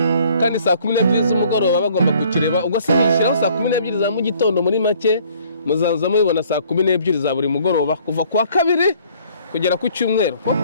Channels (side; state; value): both; inverted; correlation -0.58